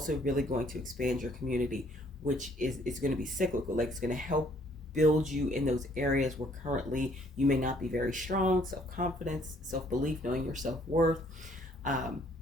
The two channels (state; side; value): normal; both; correlation 0.63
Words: really going to expand your community, which is going to be cyclical. Like, it's going to help build you in those areas where currently you may not be very strong. Self-confidence, self-belief, knowing your self-worth.